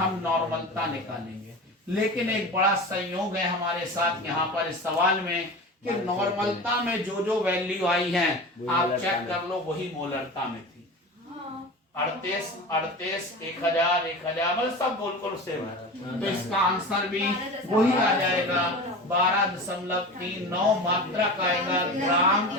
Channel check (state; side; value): normal; both; correlation 0.31